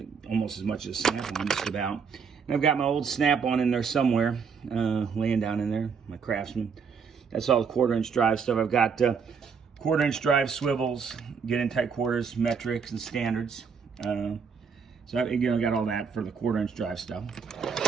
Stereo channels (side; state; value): left; quieter; 6.1 dB